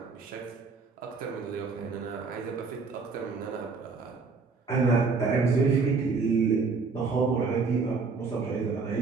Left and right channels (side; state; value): left; quieter; 4.5 dB